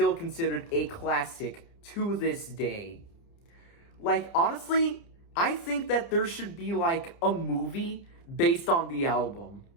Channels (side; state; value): right; late; 30 ms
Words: considered a classic to this day. Like, honestly, I think that there should be, like, a movie based on the album.